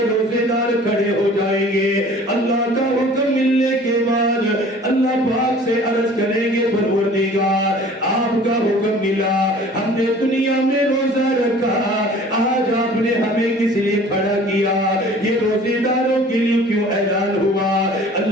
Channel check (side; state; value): both; normal; correlation 0.48